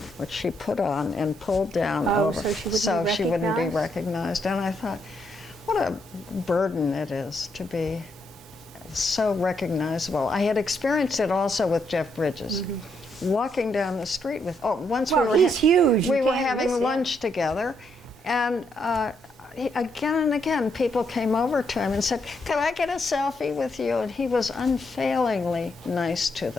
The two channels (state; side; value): normal; both; correlation 0.77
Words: which she put on and pulled down over, so she wouldn't be recognized. And I thought, what a burden it is to be so recognizable. I had experienced it also with Jeff Bridges. Walking down the street with, once Well, he's huge. we You were can't having miss him. lunch together, and again and again, people came over to him and said, "Could I get a selfie with you?" And he was unfailingly nice to